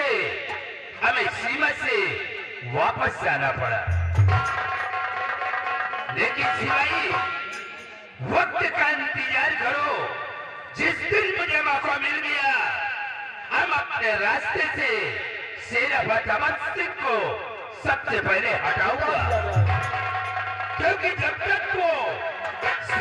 हमें सीमा से वापस जाना पड़ा। लेकिन सिपाही, वक्त का इंतजार करो। जिस दिन मुझे मौका मिल गया, हम अपने रास्ते से सेनापति अमर सिंह को सबसे पहले हटाऊंगा, क्योंकि जब तक वो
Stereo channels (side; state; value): both; identical; correlation 1.00